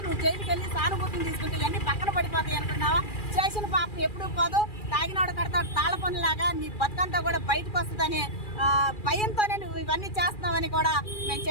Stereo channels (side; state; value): right; late; 2.4 ms